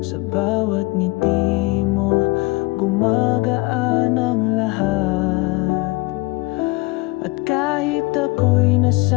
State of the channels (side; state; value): right; quieter; 23.5 dB